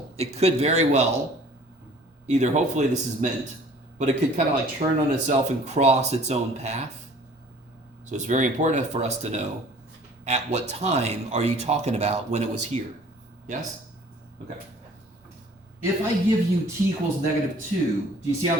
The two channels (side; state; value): both; normal; correlation 0.51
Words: it could very well, either hopefully this is meant, but it could kind of like turn on itself and cross its own path. So it's very important for us to know at what time are you talking about when it was here. Yes? Okay. If I give you t equals -2, do you see how